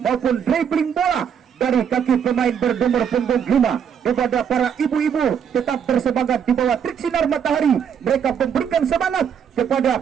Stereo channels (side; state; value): left; quieter; 7.8 dB